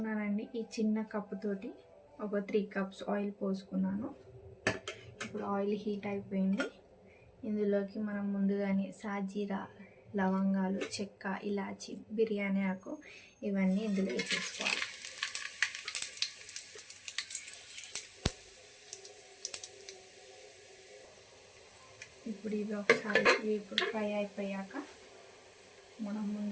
ఈ చిన్న కప్పుతోటి ఒక 3 కప్స్ ఆయిల్ పోసుకున్నాను. ఇప్పుడు ఆయిల్ హీట్ అయిపోయింది. ఇందులోకి మనం ముందుగానే సాజీరా, లవంగాలు, చెక్క, ఇలాచి, బిర్యానీ ఆకు ఇవన్నీ ఇందులో వేసేసుకోవాలి. ఇప్పుడు ఇవి ఒకసారి ఇప్పుడు ఫ్రై అయిపోయాక మనం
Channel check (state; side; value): identical; both; correlation 1.00